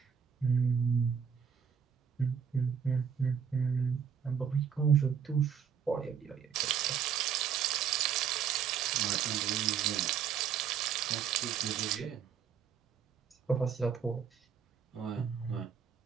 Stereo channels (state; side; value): quieter; left; 7.6 dB